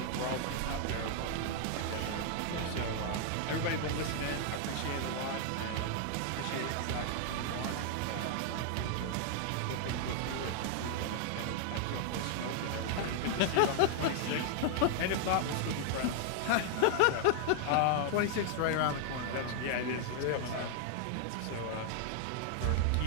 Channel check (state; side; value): different; both; correlation 0.00